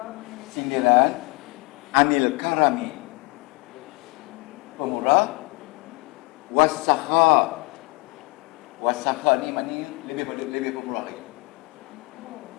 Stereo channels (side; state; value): right; quieter; 26.4 dB